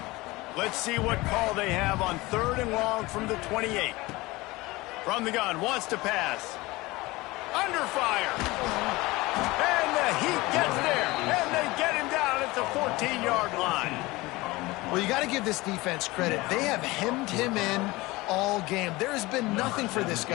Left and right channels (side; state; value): right; quieter; 21.1 dB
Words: Let's see what call they have on 3rd and long from the 28. From the gun, wants to pass. Under fire. And the Heat gets there. And they get him down at the 14-yard line. Well, you got to give this defense credit. They have hemmed him in all game. There has been nothing for this